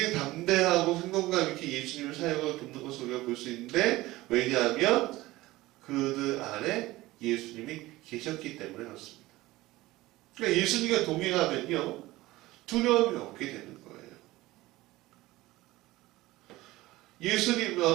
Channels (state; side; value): quieter; left; 18.4 dB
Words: 담대하고 생동감 있게 예수님의 사역을 돕는 것을 우리가 볼 수 있는데, 왜냐하면 그들 안에 예수님이 계셨기 때문에 그렇습니다. 그러니까 예수님과 동행하면요 두려움이 없게 되는 거예요. 예수님